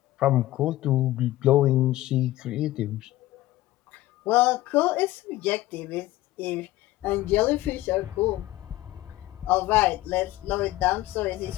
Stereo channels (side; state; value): right; quieter; 16.4 dB